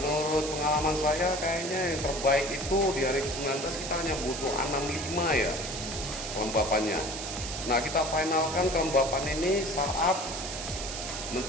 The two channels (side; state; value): right; noise; hiss, 6 dB below the sound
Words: pengalaman saya kayaknya yang terbaik itu di hari ke-19 kita hanya butuh 65 ya kelembapannya. Nah, kita finalkan kelembapan ini saat